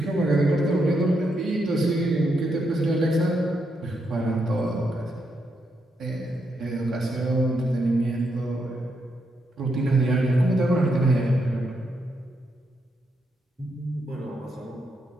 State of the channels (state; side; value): normal; both; correlation 0.80